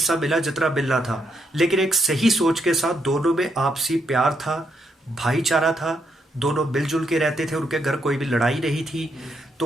मिला जितना मिलना था। लेकिन एक सही सोच के साथ दोनों में आपसी प्यार था, भाईचारा था, दोनों मिलजुल के रहते थे, उनके घर कोई भी लड़ाई नहीं थी,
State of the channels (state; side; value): normal; both; correlation 0.77